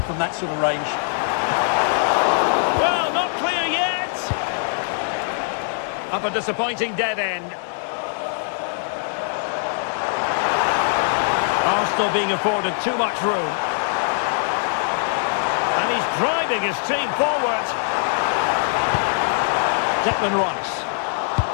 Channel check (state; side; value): silent; right; digital silence